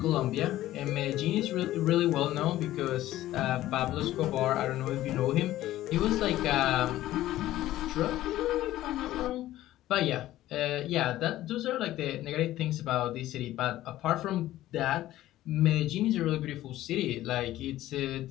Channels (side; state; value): right; quieter; 14.7 dB